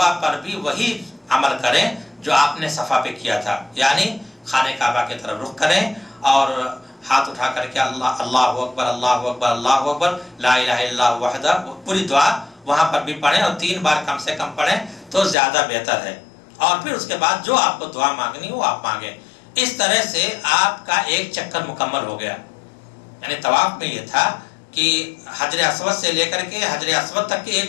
پر بھی وہی عمل کریں جو آپ نے صفا پہ کیا تھا، یعنی خانہ کعبہ کی طرف رخ کریں اور ہاتھ اٹھا کر کے اللہ اکبر اللہ اکبر اللہ اکبر لا الہ الا اللہ وحدہ، پوری دعا وہاں پر بھی پڑھیں، اور 3 بار کم سے کم پڑھیں تو زیادہ بہتر ہے۔ اور پھر اس کے بعد جو آپ کو دعا مانگنی وہ آپ مانگیں۔ اس طرح سے آپ کا ایک چکر مکمل ہو گیا۔ یعنی طواف میں یہ تھا کہ حجر اسود سے لے کر کے حجر اسود تک کے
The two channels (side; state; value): right; drops out; at 15.4 s